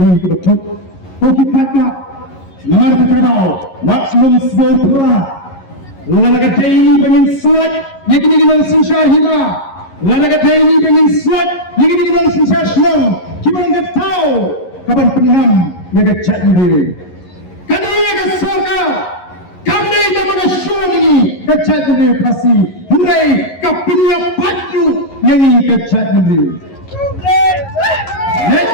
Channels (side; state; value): right; late; 11 ms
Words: kebetul koki kata nomor terkenal maksimum sebuah lalaga daily bangin suat yakini kita sinsar hina lalaga daily bangin suat yakini kita sinsar senang kita nak tahu kapan penam berkecat negeri kadang kesoka kami dapat show ini kecat negeri pasti Hurai kapinya baju yang ini kecat negeri.